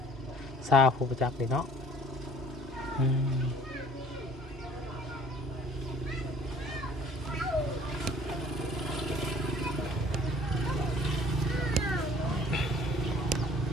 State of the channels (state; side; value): normal; both; correlation 0.53